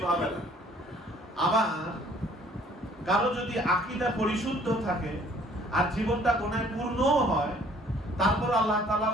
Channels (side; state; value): both; normal; correlation 0.58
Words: হবে না। আবার কারো যদি আকীদা পরিশুদ্ধ থাকে আর জীবনটা গুনাহে পূর্ণ হয়, তারপর আল্লাহ তাআলা